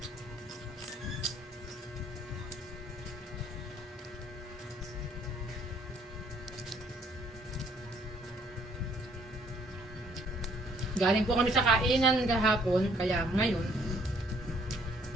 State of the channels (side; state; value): both; normal; correlation 0.63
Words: Galing po kami sa kainan kahapon, kaya ngayon